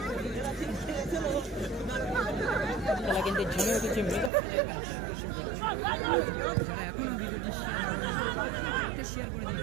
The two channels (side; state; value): left; drops out; at 4.3 s